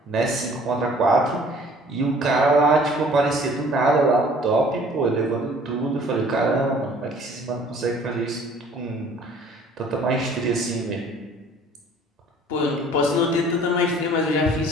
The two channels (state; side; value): normal; both; correlation 0.53